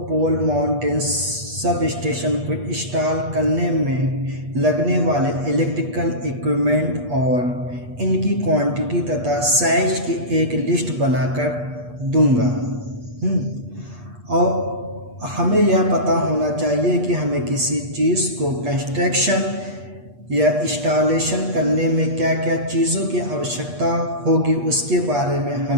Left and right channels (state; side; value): late; left; 8.4 ms